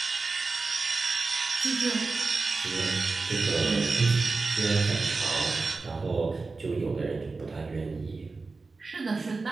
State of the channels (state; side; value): quieter; left; 3.9 dB